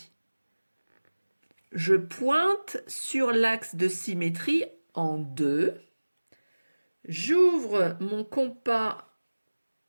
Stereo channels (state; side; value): inverted; both; correlation -1.00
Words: Je pointe sur l'axe de symétrie en 2. J'ouvre mon compas